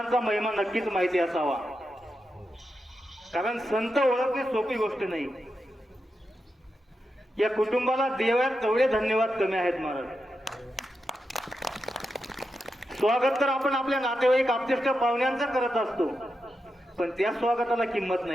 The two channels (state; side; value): normal; both; correlation 0.88